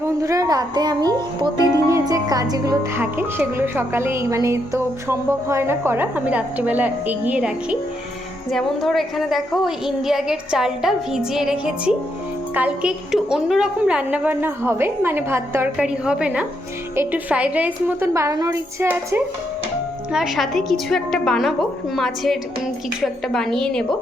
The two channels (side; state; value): both; normal; correlation 0.78